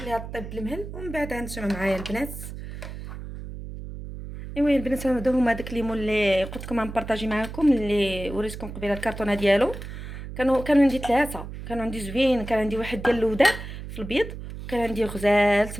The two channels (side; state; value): right; noise; hum, 10 dB below the sound